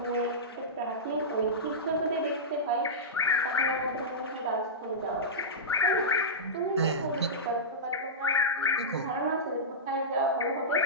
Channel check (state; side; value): normal; both; correlation -0.15